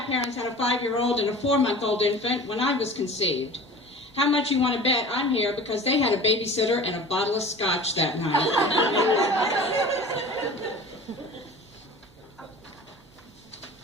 had a 5-year-old and a 4-month-old infant when I was conceived. How much you want to bet I'm here because they had a babysitter and a bottle of scotch that night.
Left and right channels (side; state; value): both; normal; correlation 0.40